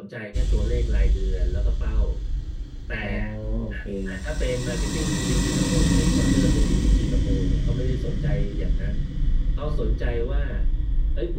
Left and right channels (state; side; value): identical; both; correlation 1.00